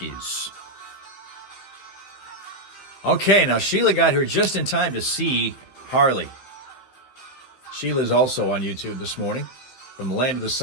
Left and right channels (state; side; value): late; right; 15 ms